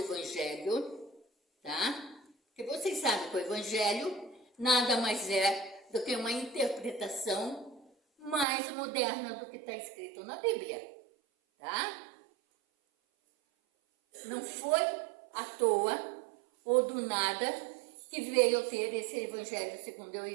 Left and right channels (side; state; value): left; drops out; at 8.5 s